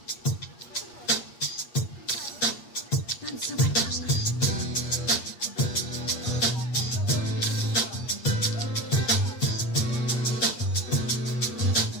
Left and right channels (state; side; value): late; right; 8.4 ms